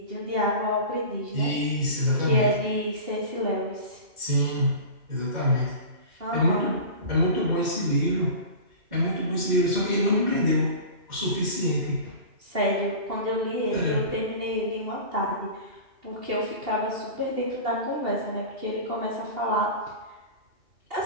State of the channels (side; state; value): left; late; 2.8 ms